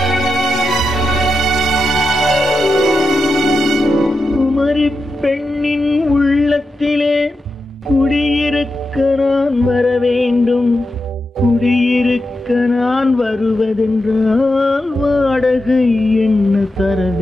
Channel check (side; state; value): both; normal; correlation 0.89